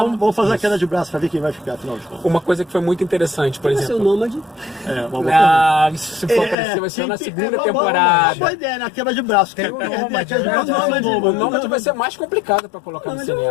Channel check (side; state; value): right; drops out; at 6.6 s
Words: vamos fazer a queda de braço pra ver quem vai ficar, afinal de contas. Uma coisa que foi muito interessante, por Vai ser o exemplo... Nômade. Isso se for aparecer, vai ser na segunda Uma temporada. boa ideia, na queda de braço. Tem o É, Nômade, queda de braço, O nome vai ser mais complicado para colocar no